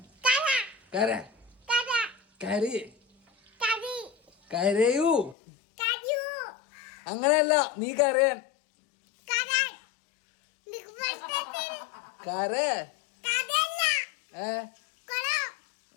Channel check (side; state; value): right; drops out; at 5.4 s